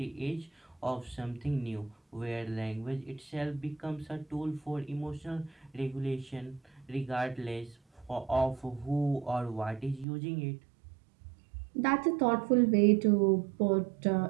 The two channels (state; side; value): drops out; left; at 10.1 s